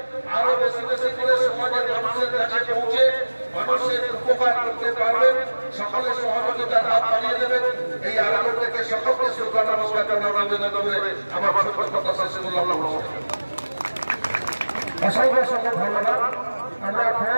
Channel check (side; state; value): both; inverted; correlation -1.00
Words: আরো বেশি বেশি করে সমাজের মানুষের কাছে পৌঁছে মানুষের উপকার করতে পারবেন। সকলের সহযোগিতার হাত বাড়িয়ে দেবেন। এই আলোচনা থেকে সকলকে শ্রদ্ধা নমস্কার জানাবেন করে আমার ছোট কথা শেষ করলাম। অসংখ্য অসংখ্য ধন্যবাদ। আমরা